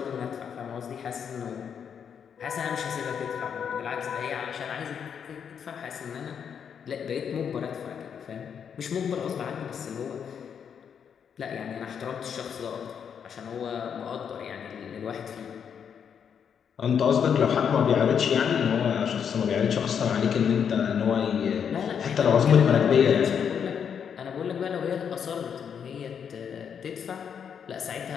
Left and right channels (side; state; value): right; quieter; 7.6 dB